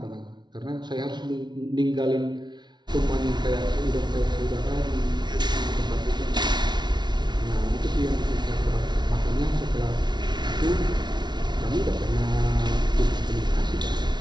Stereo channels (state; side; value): late; left; 0.21 ms